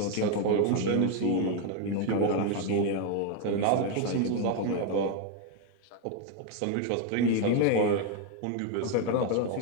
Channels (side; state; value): both; different; correlation 0.01